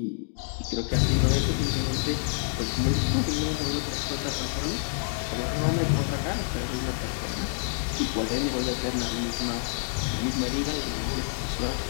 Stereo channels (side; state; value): right; silent; digital silence